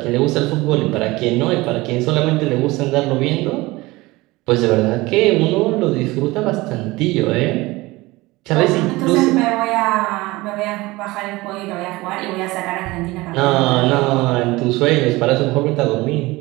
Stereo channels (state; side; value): quieter; left; 20.9 dB